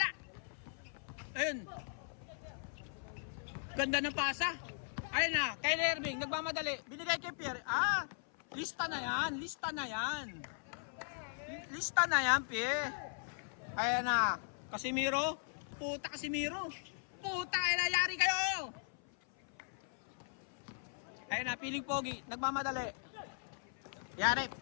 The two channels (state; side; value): silent; right; 52 dB below the other